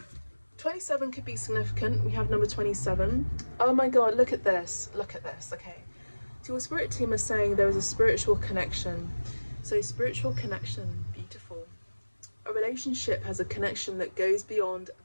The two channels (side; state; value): both; inverted; correlation -1.00